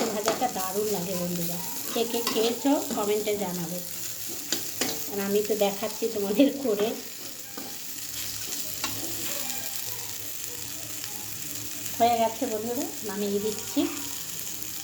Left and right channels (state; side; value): identical; both; correlation 1.00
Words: ভাজাটা দারুণ লাগে বন্ধুরা, কে কে খেয়েছো কমেন্টে জানাবে, আর আমি তো দেখাচ্ছি তোমাদের করে। হয়ে গেছে বন্ধুরা, নামিয়ে দিচ্ছি।